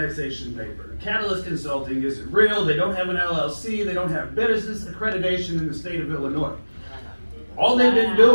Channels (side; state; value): both; inverted; correlation -1.00